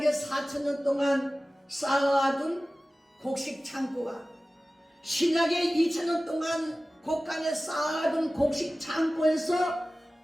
4,000년 동안 쌓아둔 곡식 창고와 신약의 2,000년 동안 곳간에 쌓아둔 곡식 창고에서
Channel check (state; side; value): normal; both; correlation 0.96